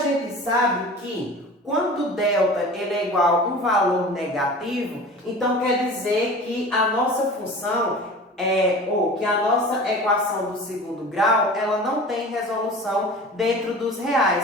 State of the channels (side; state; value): both; normal; correlation 0.38